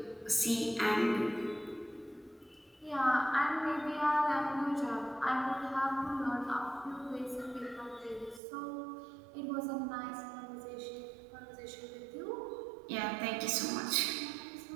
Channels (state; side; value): drops out; left; at 8.4 s